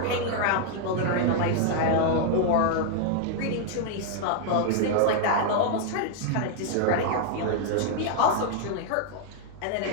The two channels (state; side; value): different; both; correlation -0.01